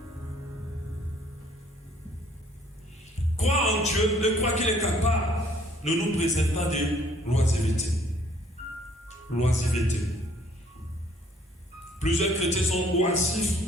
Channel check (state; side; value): normal; both; correlation 0.61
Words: Croire en Dieu, de croire qu'il est capable, ne nous préserve pas de l'oisiveté. L'oisiveté. Plusieurs chrétiens sont